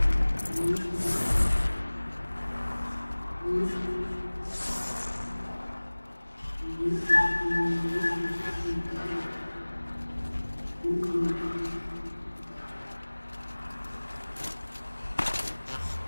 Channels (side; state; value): both; inverted; correlation -1.00